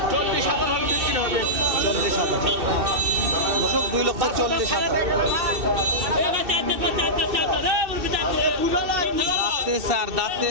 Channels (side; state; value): left; late; 2.6 ms